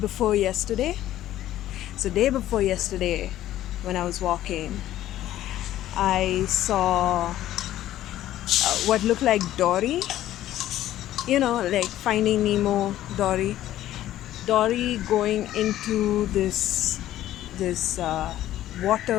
yesterday. So day before yesterday, when I was walking, I saw what looked like Dory. You know, like Finding Nemo, Dory. Dory going into this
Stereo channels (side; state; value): right; quieter; 13.3 dB